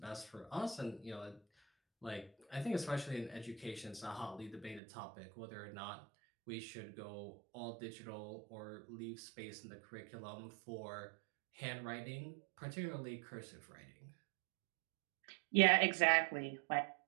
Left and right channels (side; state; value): left; drops out; at 4.8 s